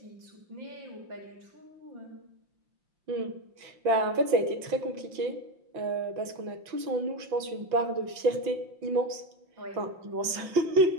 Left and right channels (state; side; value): late; left; 6.0 ms